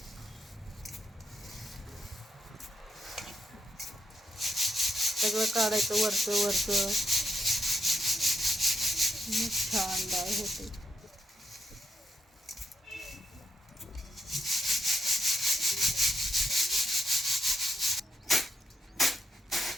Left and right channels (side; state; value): both; normal; correlation 0.80